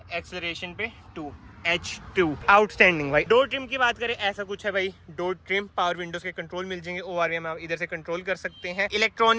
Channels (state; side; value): identical; both; correlation 1.00